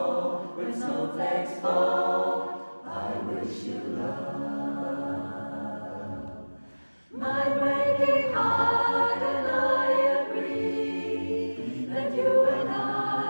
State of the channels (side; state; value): both; inverted; correlation -1.00